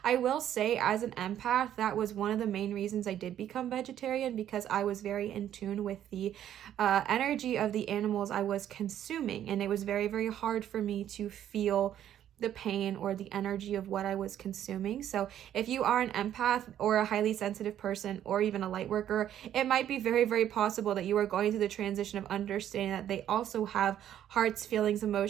I will say, as an empath, that was one of the main reasons I did become vegetarian, because I was very in tune with the energy of the animals I was consuming, and it was very, very hard for me to feel the pain or the energy of what I was consuming. So if you are an empath or a highly sensitive person or even a light worker, it might be very, very possible that you are going through the transition of understanding that they also have hearts, feelings,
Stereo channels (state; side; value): quieter; left; 10.9 dB